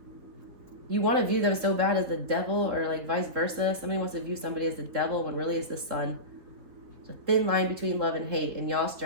You want to view them so bad as the devil, or like vice versa. Somebody wants to view somebody as the devil when really it's the sun. There's a thin line between love and hate, and y'all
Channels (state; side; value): late; left; 4.0 ms